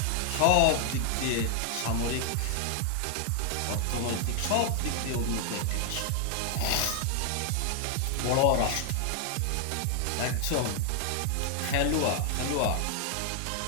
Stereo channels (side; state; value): both; different; correlation 0.00